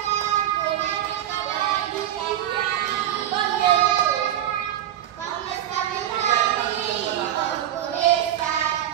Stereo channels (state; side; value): quieter; left; 11.6 dB